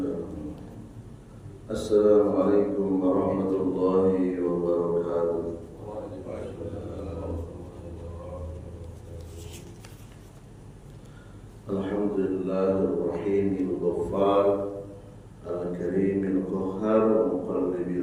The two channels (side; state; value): both; identical; correlation 1.00